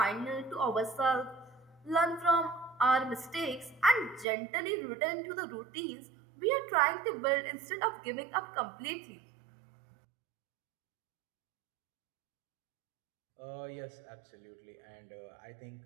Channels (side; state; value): left; drops out; at 4.2 s